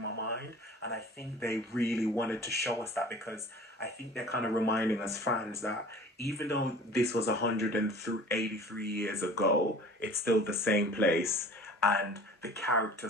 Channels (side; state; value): both; normal; correlation 0.44